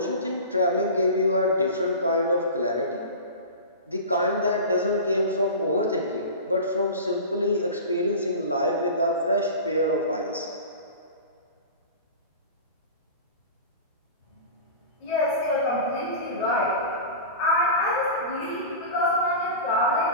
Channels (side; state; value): both; inverted; correlation -0.32